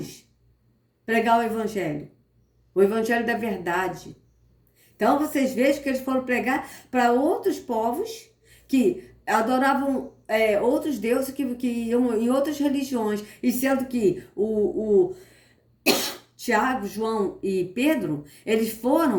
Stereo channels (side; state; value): both; identical; correlation 1.00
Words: pregar o evangelho da verdade. Então vocês vejam que eles foram pregar para outros povos que adoravam outros deuses que iam em outras religiões, e sendo que o Tiago, João e Pedro, eles